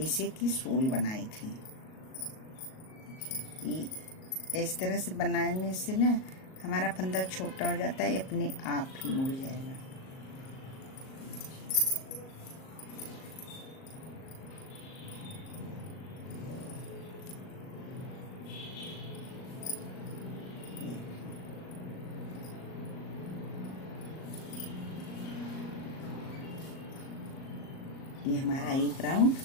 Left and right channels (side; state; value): right; late; 38 ms